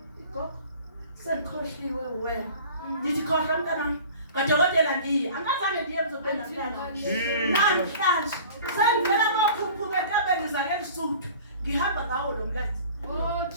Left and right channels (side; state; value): both; inverted; correlation -0.43